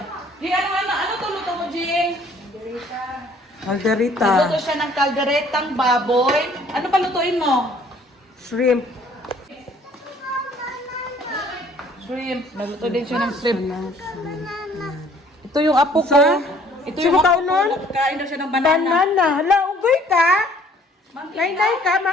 Jing, ano luto mo, Jing? Calderita. Nagluto siya ng kalderetang baboy. Ano pa lutuin mo? Shrimp. Shrimp. Nagluto din siya ng shrimp. Ito yung apo ko. Ito Sino yung ka apo ko. unon? Nagkain daw siya ng banana. Banana. Hala, ugoy ka? Monkey Nay ka,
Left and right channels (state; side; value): normal; both; correlation 0.57